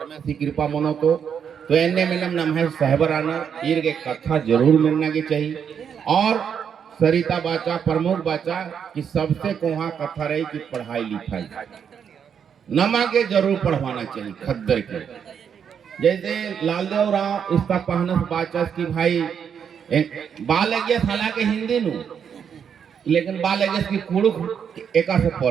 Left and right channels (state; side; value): quieter; left; 7.6 dB